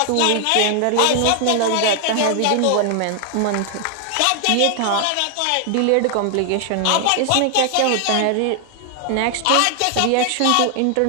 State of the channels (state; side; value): different; both; correlation 0.00